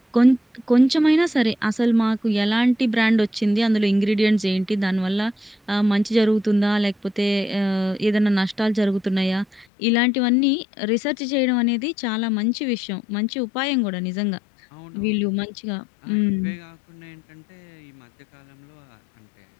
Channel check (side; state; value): right; drops out; at 9.7 s